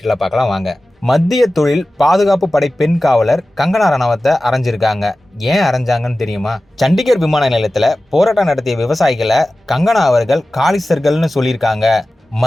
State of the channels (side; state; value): both; normal; correlation 0.95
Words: பார்க்கலாம் வாங்க. மத்திய தொழில் பாதுகாப்பு படை பெண் காவலர் கங்கனா ரணாவத்தை அரைஞ்சிருக்காங்க. ஏன் அரைஞ்சாங்கன்னு தெரியுமா? சண்டிகர் விமான நிலையத்தில் போராட்டம் நடத்திய விவசாயிகளை கங்கனா அவர்கள் காலிஸ்தர்கள்னு சொல்லியிருக்காங்க.